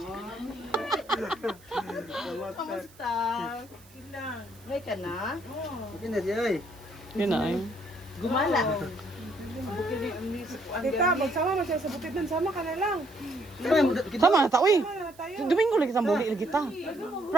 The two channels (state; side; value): noise; right; hiss, 26 dB below the sound